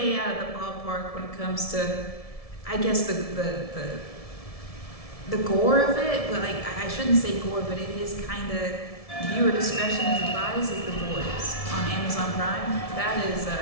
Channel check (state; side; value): late; right; 1.7 ms